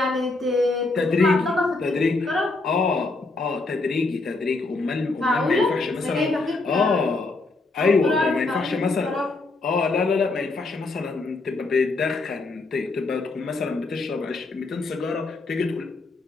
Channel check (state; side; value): quieter; right; 3.4 dB